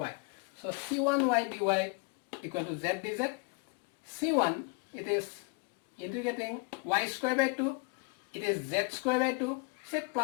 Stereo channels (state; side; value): quieter; right; 31.5 dB